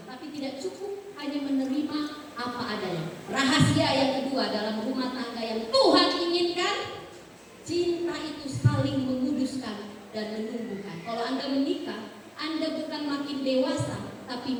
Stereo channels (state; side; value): identical; both; correlation 1.00